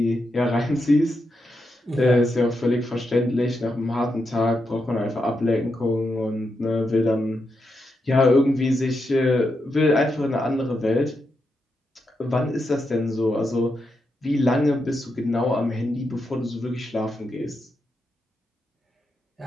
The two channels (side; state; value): both; normal; correlation 0.85